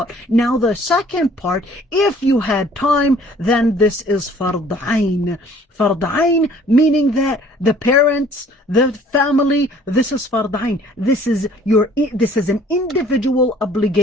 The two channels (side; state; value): both; normal; correlation 0.55